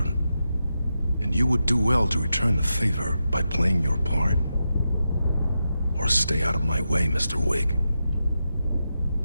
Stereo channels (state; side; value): inverted; both; correlation -0.88